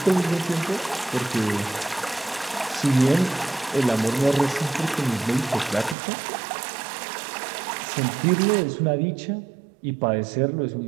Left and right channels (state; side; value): drops out; left; at 6.0 s